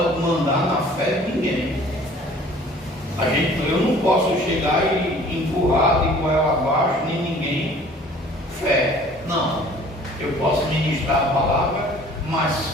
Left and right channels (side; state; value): both; normal; correlation 0.51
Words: mandar na fé de ninguém. Eu não posso chegar e empurrar de goela abaixo, nem ninguém. Fé, não. Eu posso ministrar a palavra, mas